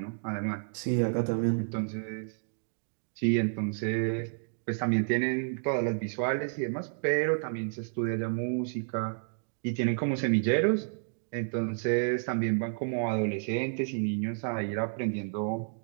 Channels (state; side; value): silent; left; digital silence